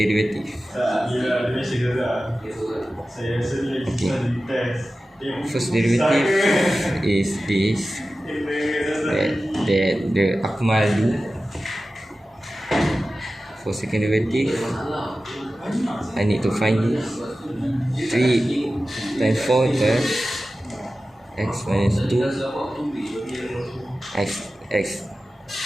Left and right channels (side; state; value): both; normal; correlation 0.95